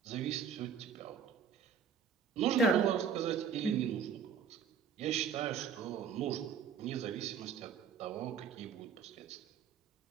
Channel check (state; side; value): quieter; left; 7.1 dB